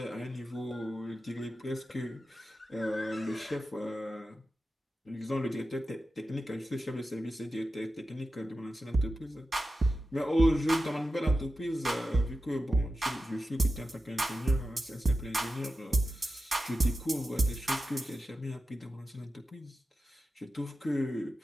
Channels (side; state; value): both; normal; correlation 0.92